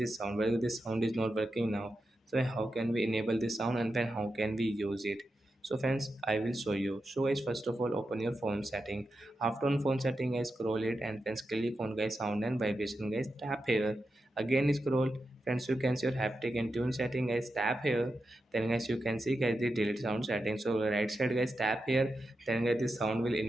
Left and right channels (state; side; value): normal; both; correlation 0.89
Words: sound. Well, this sound is not working now. So how can we enable this sound and then how can we use it? So friends, I will show you. So guys, first of all, open your phone setting. After on phone setting, guys, scroll it and then click on guys sound and vibration. Guys, tap here. Again scroll. Friends, you can see your haptic and tune setting. Guys, tap here. Then guys, you can see guys the delete sound setting. So right side guys, tap here. Then guys, this sound will